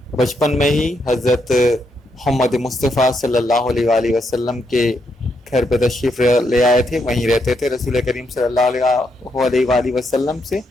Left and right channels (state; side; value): normal; both; correlation 0.79